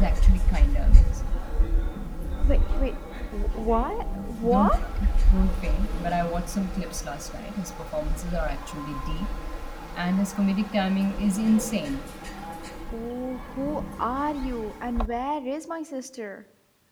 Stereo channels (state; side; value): identical; both; correlation 1.00